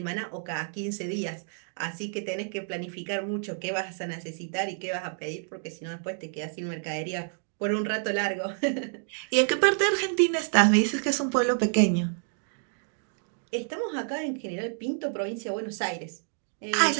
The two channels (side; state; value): left; silent; 59 dB below the other